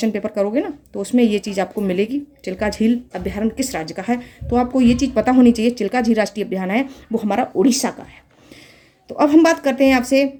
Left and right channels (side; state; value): both; identical; correlation 1.00